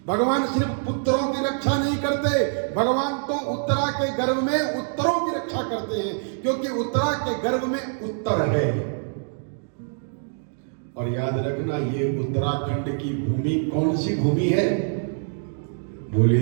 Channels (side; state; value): left; silent; digital silence